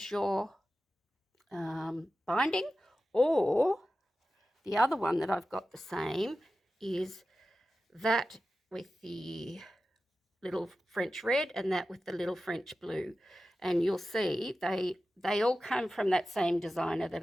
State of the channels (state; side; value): normal; both; correlation 0.94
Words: your binding, or the other one that I've got the same is that with the little French red and that with the little French blue. And you'll see they all come from that same designer that